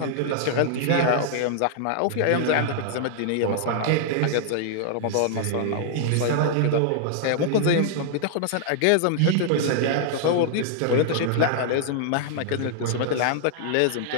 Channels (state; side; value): different; both; correlation -0.01